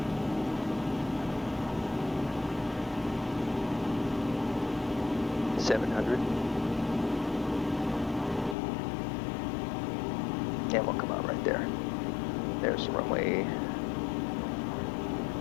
And we'll come out right there. There's the runway.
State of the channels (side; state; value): right; drops out; at 8.6 s